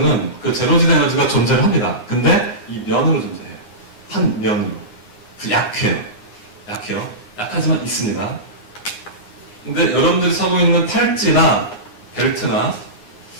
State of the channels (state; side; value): late; right; 9.7 ms